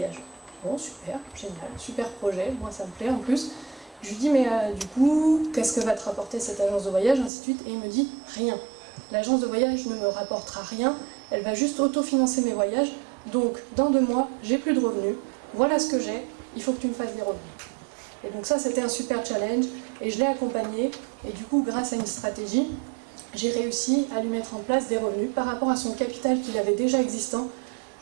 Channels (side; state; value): left; drops out; at 7.3 s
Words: Bon, super, génial, super projet, moi ça me plaît en plus. Je lui dis mais du coup, qu'est-ce que va te rapporter cette agence de voyage, ainsi de suite. Et il me dit rien. L'agence de voyage ne me rapportera rien, elle va juste autofinancer mes voyages. Donc dans 2 mois, j'ai plus de revenus, voilà ce que j'ai, il faut que tu me fasses des revenus. Et donc ça c'était un super challenge et je l'ai accompagné. Et du coup, grâce à une stratégie, j'ai réussi à lui mettre en place des revenus par rapport à son capital qu'il avait déjà existant.